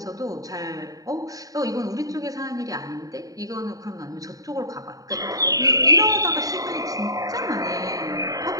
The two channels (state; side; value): late; left; 0.17 ms